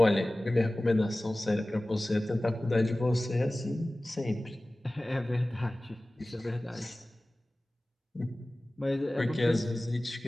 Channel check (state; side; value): normal; both; correlation 0.97